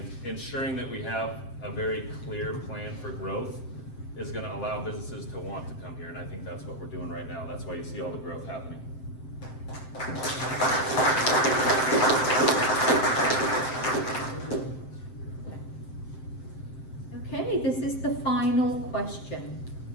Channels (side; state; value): right; late; 7.7 ms